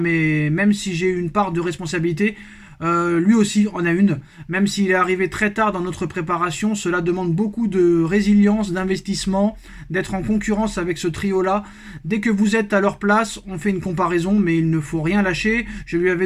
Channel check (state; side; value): identical; both; correlation 1.00